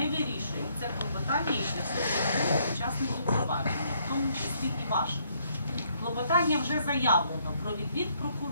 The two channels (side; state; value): both; inverted; correlation -0.69